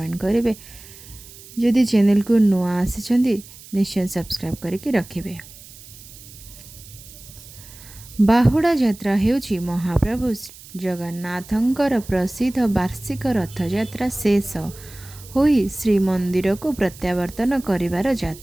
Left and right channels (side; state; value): right; noise; hiss, 19 dB below the sound